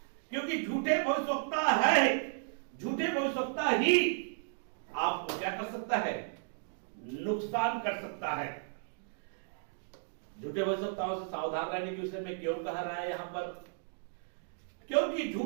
क्योंकि झूठे भविष्यवक्ता है, झूठे भविष्यवक्ता ही आपको क्या कर सकता है, नुकसान कर सकता है। झूठे भविष्यवक्ताओं से सावधान रहने के विषय में क्यों कहा रहा है यहां पर? क्योंकि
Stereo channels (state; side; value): silent; left; digital silence